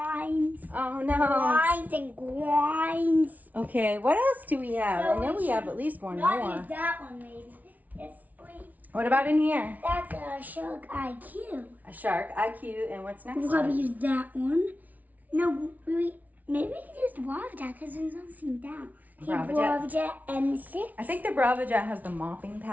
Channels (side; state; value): left; late; 0.075 ms